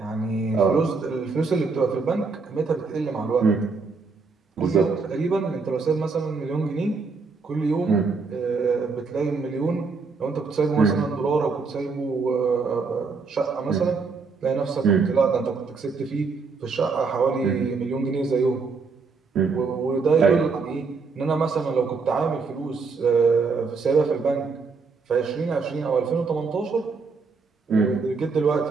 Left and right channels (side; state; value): left; quieter; 4.6 dB